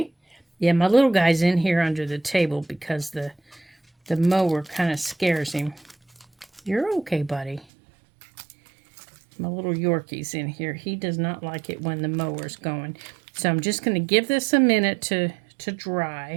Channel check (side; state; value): left; drops out; at 7.7 s